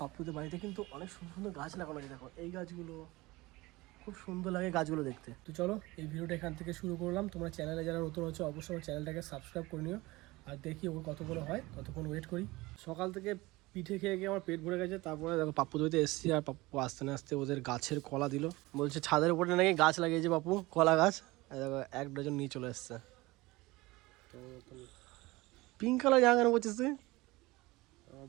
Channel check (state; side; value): quieter; left; 21.1 dB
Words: পাপ্পুদের বাড়িতে কিন্তু অনেক সুন্দর সুন্দর গাছ লাগানো আছে, দেখো এই গাছগুলো খুব সুন্দর লাগে গাছগুলো দেখতে। তো চলো এই ভিডিওটা এখান থেকে শুরু করলাম। তোমরা চ্যানেলে যারা নতুন হচ্ছে অবশ্যই আমার চ্যানেলটাকে সাবস্ক্রাইব করে নিও। আর দেখি ওর কতগুলো হয়, ততক্ষণ ওয়েট করি। সকাল থেকে পিঠে খেয়ে গিয়ে আমার পেট ভরে গেছে। তারপরে দেখো পাপ্পু দইতে এসেছি, আর পাপ্পু আসতে না আসতে ওদের গাছের কলা দিল। বলছে ছাদের উপরে নাকি গাছ লাগিয়েছে পাপ্পু, কলা গাছ। দেখো 1 ডজন নিয়ে চলে এসছে। পিঙ্ক কালার জামা কেন বলছিস তুই?